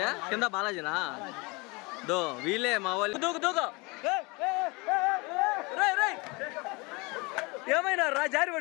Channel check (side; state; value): right; quieter; 26.9 dB